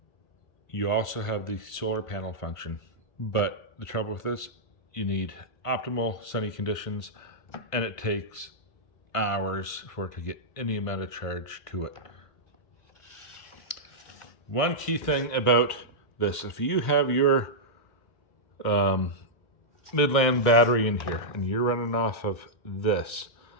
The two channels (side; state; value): right; late; 1.5 ms